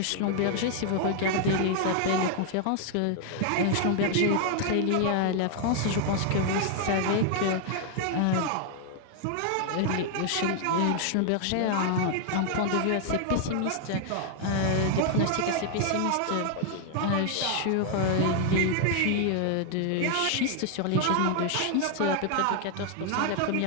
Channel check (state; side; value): different; both; correlation 0.00